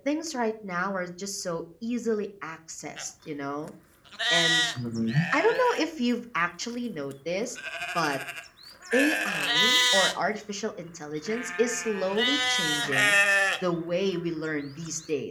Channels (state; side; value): identical; both; correlation 1.00